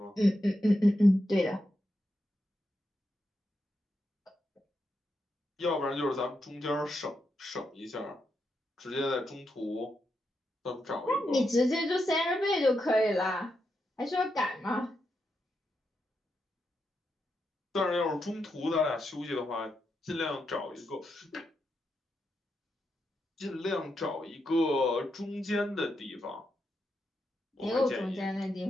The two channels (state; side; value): normal; both; correlation 0.85